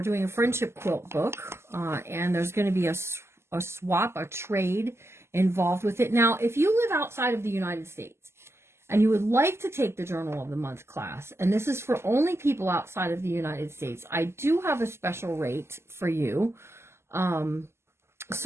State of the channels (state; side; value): late; left; 0.12 ms